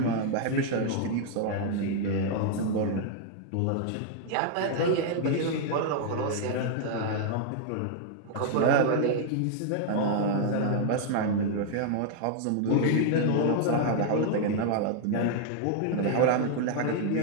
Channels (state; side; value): different; both; correlation 0.00